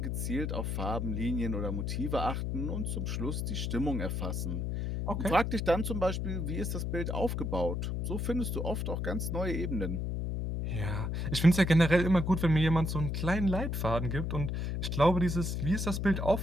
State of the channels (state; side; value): noise; left; hum, 1 dB below the sound